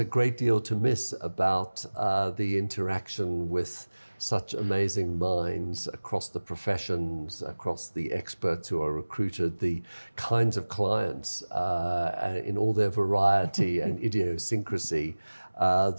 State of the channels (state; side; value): inverted; both; correlation -1.00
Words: great deal to miss about the interaction with such amazing minds across the professions, across the experts who are recruited, the kinds of clients in all their variety and idiosyncrasy,